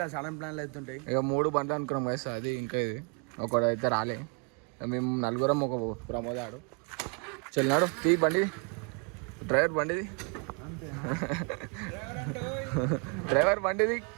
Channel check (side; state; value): left; quieter; 36.7 dB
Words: సడన్ ప్లాన్లు అవుతుంటాయి ఇక 3 బండ్లు అనుకున్నాం guys అది ఇంకా ఇది ఒకడైతే రాలే మేము నలుగురం ఒక ప్రమోదాడు చెల్లినాడు తీ బండి డ్రైవర్ బండిది డ్రైవర్ బండిది